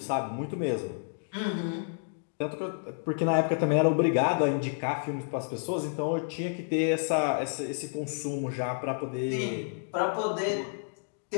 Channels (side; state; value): right; silent; digital silence